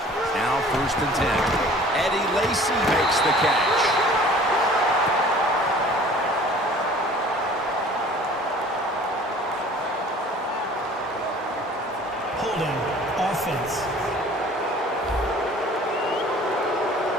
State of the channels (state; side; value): normal; both; correlation 0.49